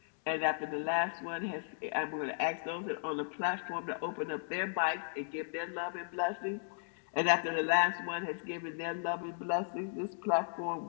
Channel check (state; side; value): silent; right; digital silence